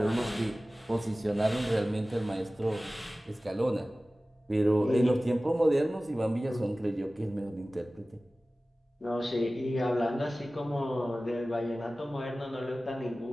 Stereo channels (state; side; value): normal; both; correlation 0.97